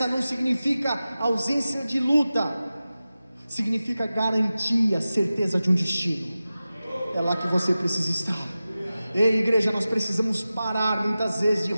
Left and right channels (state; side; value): inverted; both; correlation -0.95